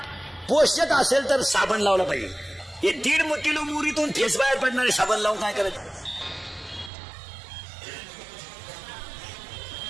पोषक असेल तर साबण लावला पाहिजे। हे 1.5 किलो मुरीतून फेस बाहेर पडणारे साबण लावून काय करायचं?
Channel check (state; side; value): drops out; left; at 6.9 s